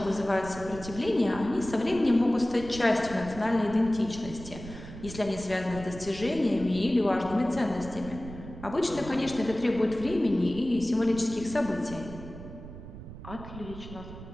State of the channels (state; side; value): noise; right; rumble, 13 dB below the sound